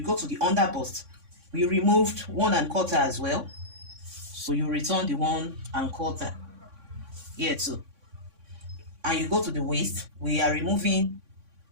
go to the under bust. We removed 1 1/4 as well, so you return the 1 1/4 here too. And you go to the waist. We are removing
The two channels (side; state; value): left; late; 3.6 ms